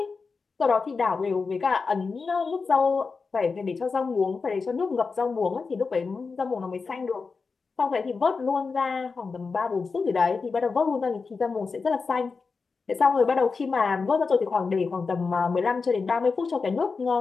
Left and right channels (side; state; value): right; quieter; 4.6 dB